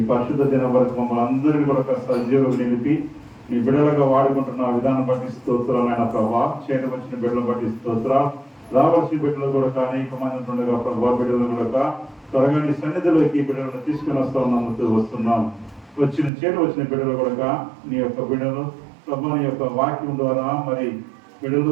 పరిశుద్ధ దినం వరకు మమ్మల్ని అందరినీ కూడా సజీవులు నిలిపి నీ బిడ్డలుగా వాడుకుంటున్న విధానం బట్టి స్తోత్రాలైన ప్రభా. చేతి వచ్చిన బిడ్డలను బట్టి స్తోత్రాలు. రావాల్సిన బిడ్డలు కూడా అనేక మంది ఉండగా ప్రభా, బిడ్డలు కూడా త్వరగా నీ సన్నిధిలోకి బిడ్డలను తీసుకుని వస్తున్నాం. వచ్చిన బిడ్డలు కూడా నీ యొక్క బిడ్డలు ప్రభా నీ యొక్క వాక్యం ద్వారా మరి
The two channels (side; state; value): left; drops out; at 16.3 s